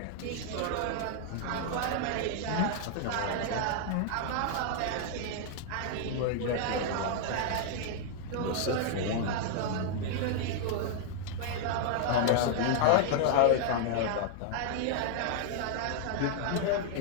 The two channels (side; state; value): both; different; correlation 0.00